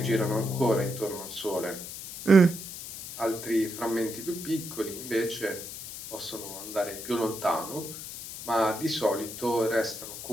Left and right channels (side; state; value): left; noise; hiss, 10 dB below the sound